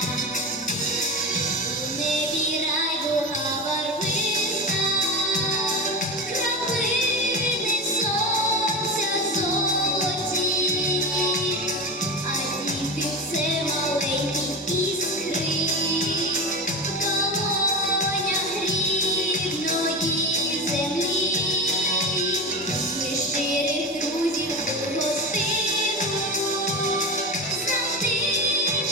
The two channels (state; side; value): normal; both; correlation 0.22